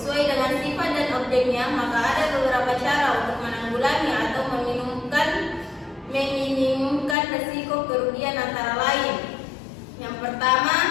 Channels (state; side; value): drops out; right; at 7.2 s